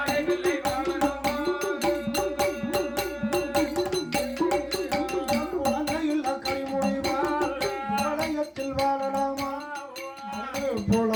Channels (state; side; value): identical; both; correlation 1.00